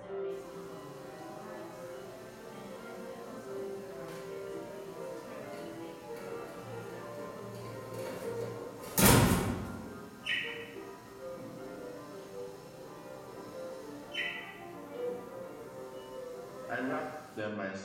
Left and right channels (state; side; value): identical; both; correlation 1.00